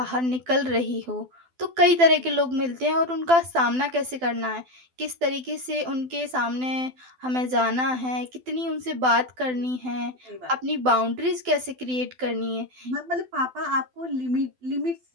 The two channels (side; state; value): left; late; 12 ms